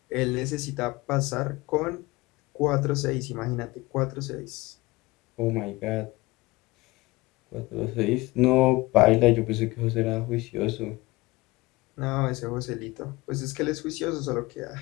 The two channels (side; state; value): right; quieter; 21.0 dB